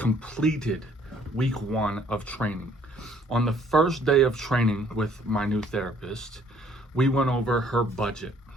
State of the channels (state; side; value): normal; both; correlation 0.61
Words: week 1 of training. On the first day of training with my new therapist, we went over her budget,